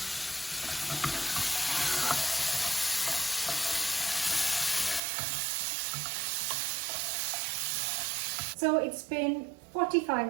So it's been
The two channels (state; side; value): drops out; left; at 5.0 s